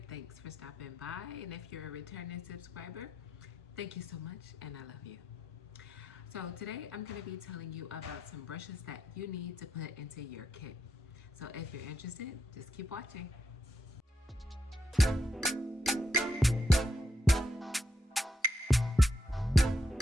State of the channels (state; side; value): normal; both; correlation 0.82